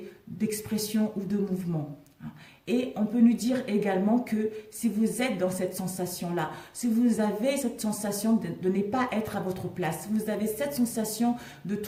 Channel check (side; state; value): both; identical; correlation 1.00